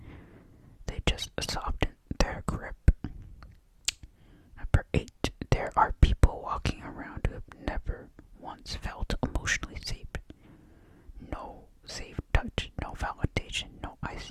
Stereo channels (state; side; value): identical; both; correlation 1.00